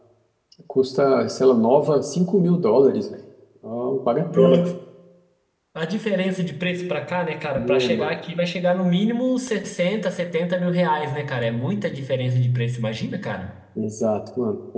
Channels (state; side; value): identical; both; correlation 1.00